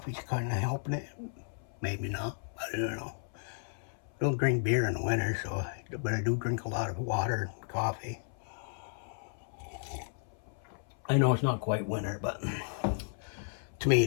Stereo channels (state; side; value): silent; right; 55 dB below the other